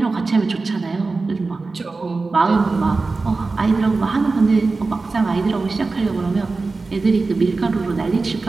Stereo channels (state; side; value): quieter; left; 3.8 dB